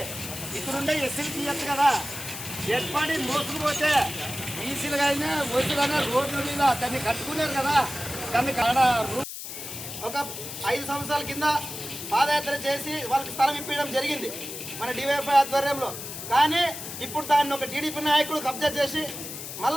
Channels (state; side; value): noise; left; hiss, 9 dB below the sound